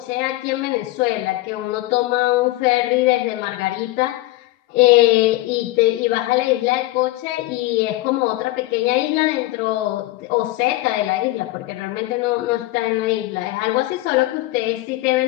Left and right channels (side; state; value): right; quieter; 18.1 dB